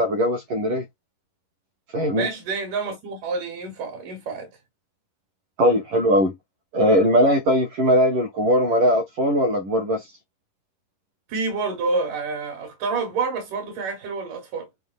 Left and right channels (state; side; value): late; left; 11 ms